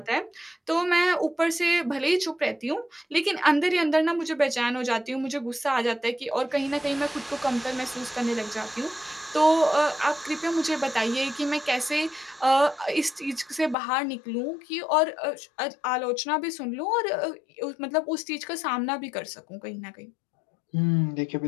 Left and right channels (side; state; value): right; drops out; at 13.8 s